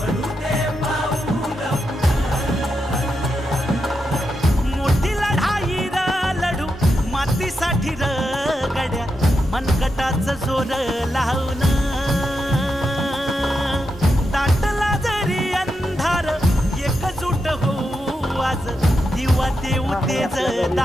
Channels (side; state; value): both; normal; correlation 0.86